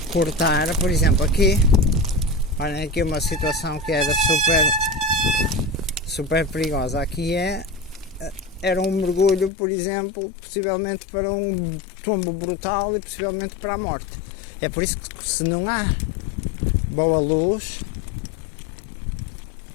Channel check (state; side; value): drops out; right; at 9.5 s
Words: cortar, por exemplo, aqui, olhem aqui uma situação que era super perigosa. Aqui era um mergulho, por exemplo, possivelmente para um tombo brutal e possivelmente para a morte. É por isso que, se não há boa luz,